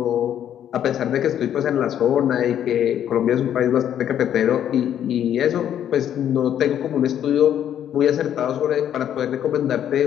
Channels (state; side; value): quieter; right; 10.2 dB